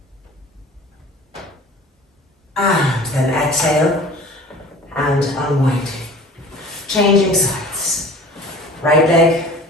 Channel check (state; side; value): normal; both; correlation 0.43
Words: And then exhale and unwinding. Changing sides. Right leg.